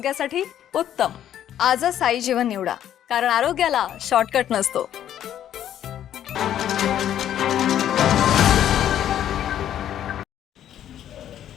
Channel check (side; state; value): right; quieter; 10.9 dB